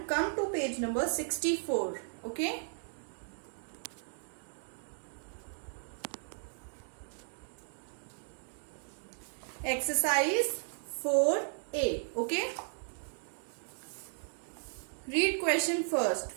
come to page number 64. Okay? Exercise 4A. Okay? Read question first.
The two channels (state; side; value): silent; left; digital silence